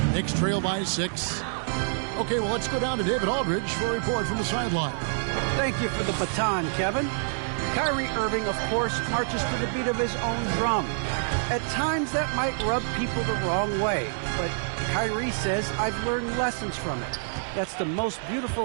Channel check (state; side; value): silent; left; digital silence